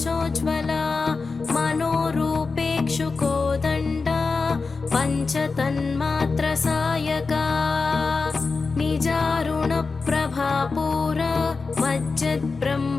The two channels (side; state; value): right; quieter; 4.3 dB